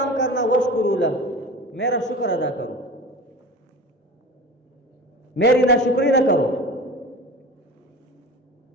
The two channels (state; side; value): normal; both; correlation 0.34